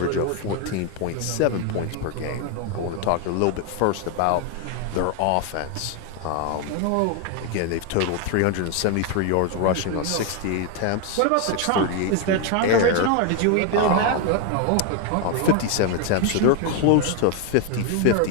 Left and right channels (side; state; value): both; different; correlation 0.01